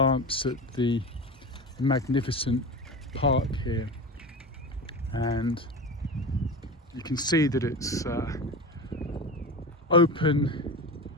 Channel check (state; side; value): normal; both; correlation 0.27